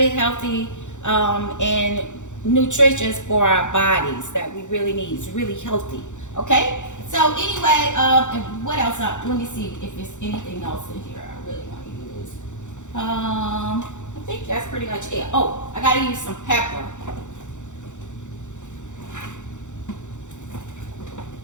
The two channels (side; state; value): right; late; 0.85 ms